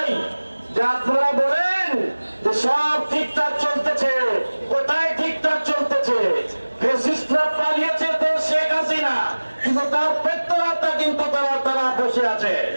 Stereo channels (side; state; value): both; inverted; correlation -1.00